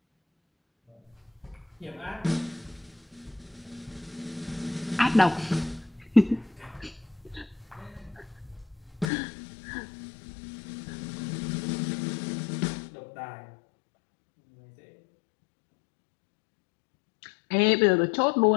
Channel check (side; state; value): right; drops out; at 9.1 s